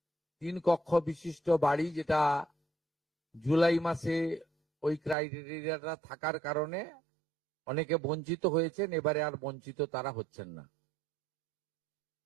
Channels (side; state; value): left; drops out; at 5.2 s